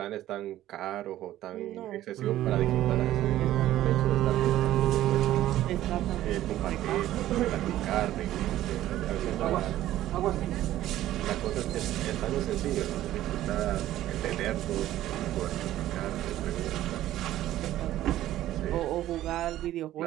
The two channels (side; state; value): left; quieter; 13.8 dB